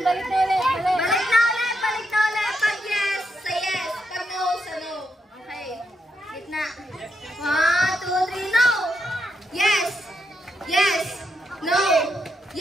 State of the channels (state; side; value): normal; both; correlation 0.81